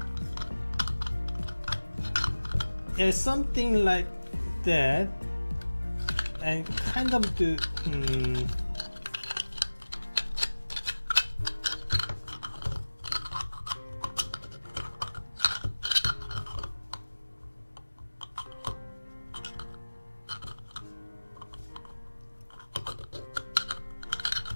Yeah, something like that. And kind of do,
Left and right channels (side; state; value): both; inverted; correlation -1.00